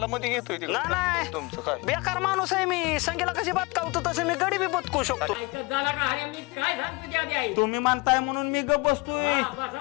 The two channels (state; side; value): quieter; right; 26.0 dB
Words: मध्ये घेतोय तिकडे. नाही तुमचं काय बेकार माणूस आहे मी. संगीला कशी बदकावतो तसं मी गडी बी बदकू शकतो. तुम्ही म्हणताय म्हणून मी गप बसतोय,